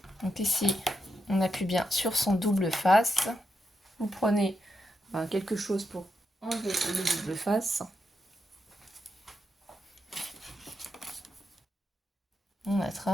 Donc ici, on appuie bien sur son double face. Vous prenez quelque chose pour enlever le double face. On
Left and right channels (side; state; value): both; normal; correlation 0.85